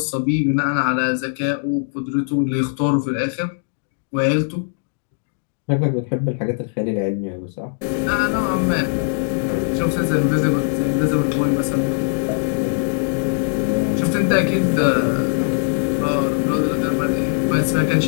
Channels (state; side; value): silent; right; digital silence